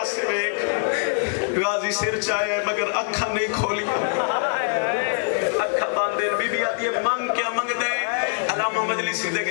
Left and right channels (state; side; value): silent; right; 63 dB below the other